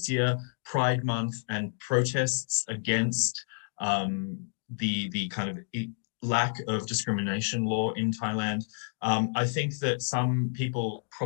year, Pride Month, and protests against the kind of lack of discrimination law in Thailand. I think that some people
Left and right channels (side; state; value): right; silent; digital silence